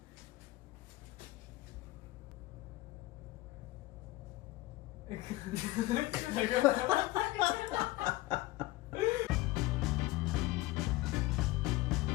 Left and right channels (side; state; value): right; quieter; 18.5 dB